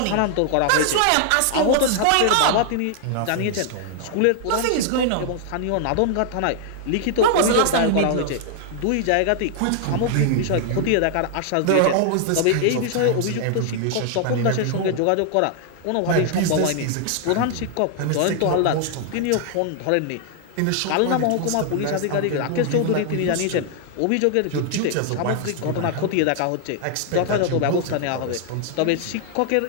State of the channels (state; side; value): different; both; correlation 0.00